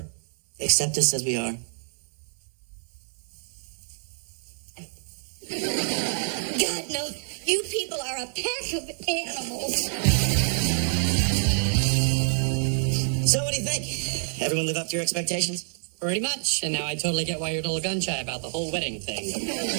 Accept us as we are? God, no. You people are a pack of animals. So what do you think? Everyone live up to your expectations? Pretty much. And now I totally get why you're a little gun-shy about the whole wedding thing.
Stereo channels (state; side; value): silent; left; digital silence